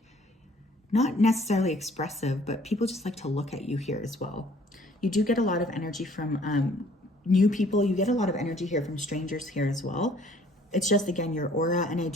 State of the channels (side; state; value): both; normal; correlation 0.58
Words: not necessarily expressive, but people just like to look at you here as well. You do get a lot of energy from new people. You get a lot of energy here from strangers here as well. It's just, again, your aura, and I